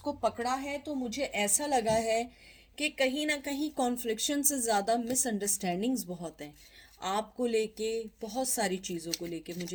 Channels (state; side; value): identical; both; correlation 1.00